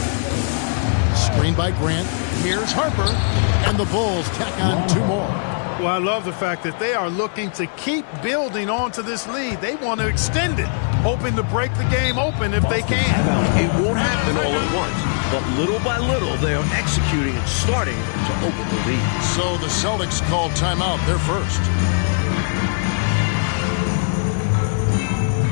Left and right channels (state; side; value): silent; right; 66 dB below the other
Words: Screen by Grant. Here's Harper. And the Bulls tack on 2 more. Well, I love the fact that they are looking to keep building onto this lead. They want to extend it, hoping to break the game open if they can. It won't happen all at once, but little by little they are executing and starting to open the lead. So the Celtics called timeout. They're first.